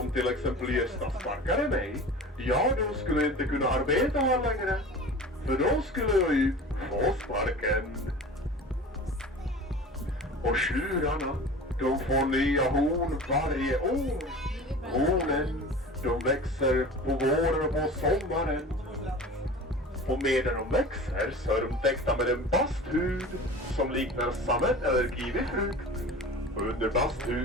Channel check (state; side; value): normal; both; correlation 0.37